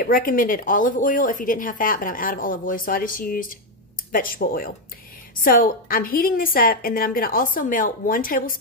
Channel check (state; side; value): normal; both; correlation 0.04